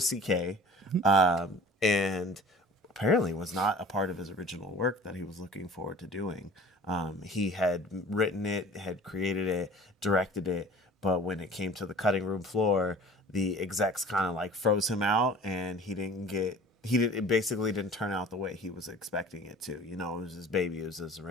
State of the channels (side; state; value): both; normal; correlation 0.45